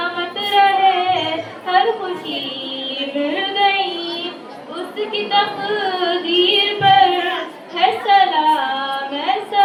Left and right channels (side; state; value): both; identical; correlation 1.00